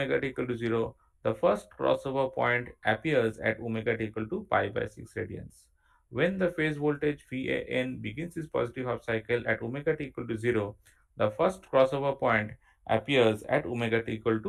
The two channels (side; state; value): both; identical; correlation 1.00